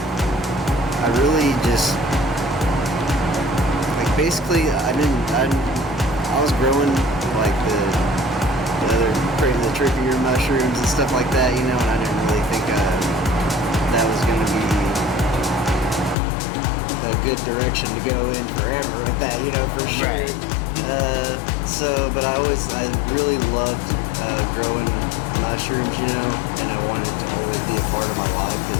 I really just like basically I was growing like the trickier mushrooms and stuff like that, you know, and I didn't really think that was gonna be a good direction to go in forever with that, you know, for sure. Right. But I really loved growing mushrooms, you know, and I wanted it to always be a part of my life because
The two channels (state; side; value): drops out; right; at 16.2 s